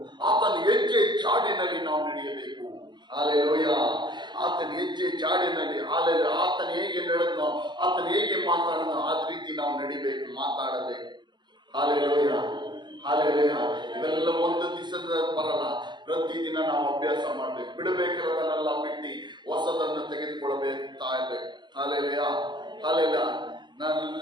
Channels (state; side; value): late; left; 0.22 ms